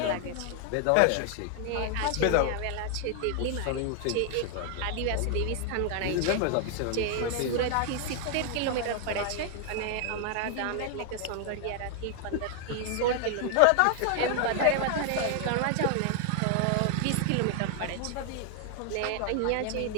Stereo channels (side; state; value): both; different; correlation 0.00